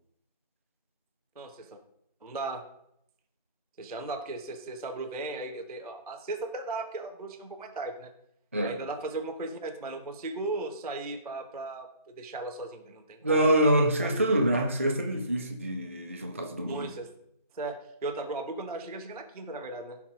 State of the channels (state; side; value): inverted; both; correlation -0.51